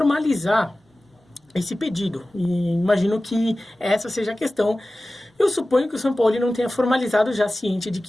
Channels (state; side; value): normal; both; correlation 0.96